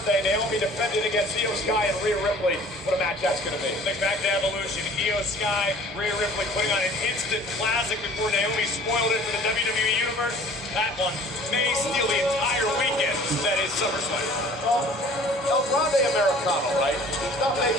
Naomi defended against Io Sky and Rhea Ripley. What a match that's going to be. Think back to Evolution. Io Sky, Rhea Ripley putting on an instant classic before Naomi spoiled it for the WWE Universe. That one may steal the entire weekend. That is SummerSlam. Well, El Grande Americano, right? He's not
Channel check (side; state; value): both; normal; correlation 0.49